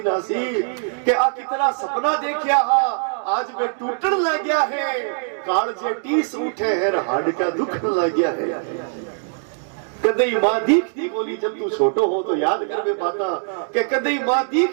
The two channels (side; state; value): left; silent; digital silence